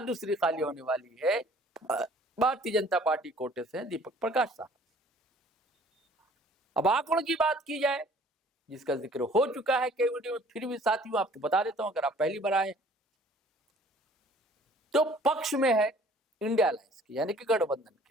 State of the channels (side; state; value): both; normal; correlation 0.54